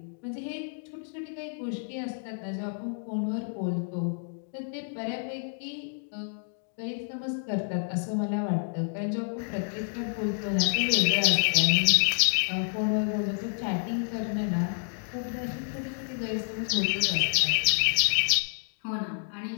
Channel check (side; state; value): right; silent; digital silence